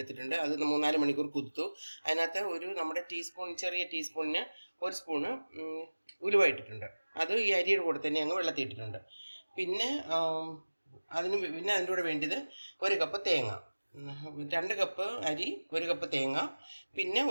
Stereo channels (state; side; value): inverted; both; correlation -1.00